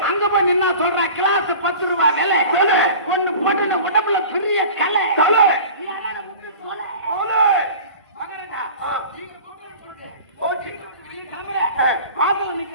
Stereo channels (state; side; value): inverted; both; correlation -0.40